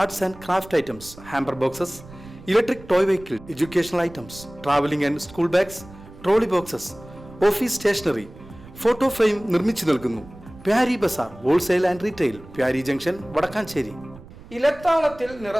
and craft items, hamper boxes, electric toy vehicle, educational items, traveling and school bags, trolley boxes, office stationery, photo frame നിർമ്മിച്ചു നൽകുന്നു. Pyari Bazaar Wholesale and Retail, Pyari Junction, Padakkancherry. ഇലത്താളത്തിൽ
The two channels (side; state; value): right; noise; rumble, 19 dB below the sound